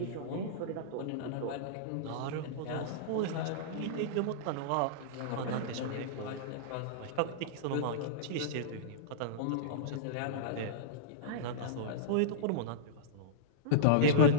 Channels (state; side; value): different; both; correlation -0.03